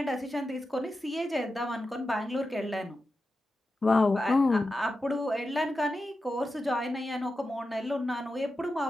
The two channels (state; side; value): normal; both; correlation 0.91